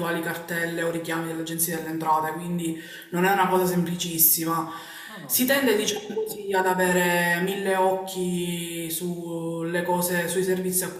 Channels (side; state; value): both; identical; correlation 1.00